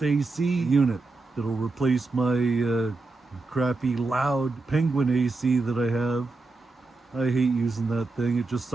AC unit that'll replace my crappy loud Penguin AC that I have. I hate using that thing. It just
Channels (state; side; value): quieter; left; 3.5 dB